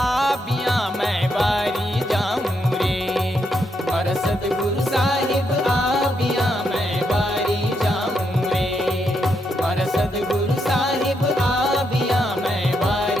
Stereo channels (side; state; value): both; normal; correlation 0.79